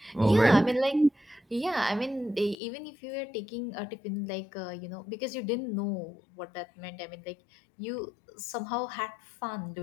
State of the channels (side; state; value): right; drops out; at 2.6 s